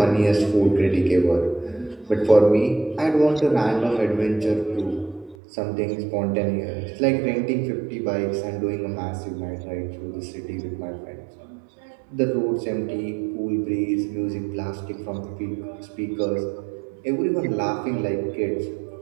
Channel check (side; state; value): left; drops out; at 5.4 s